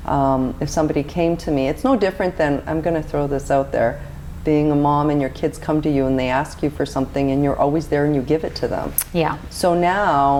If somebody came to me, it's no different than, I'm going to throw this out there, being a mom and your kids come to you and they ask you for something and you're always there and you give it to them. Yeah. So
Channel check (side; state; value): both; identical; correlation 1.00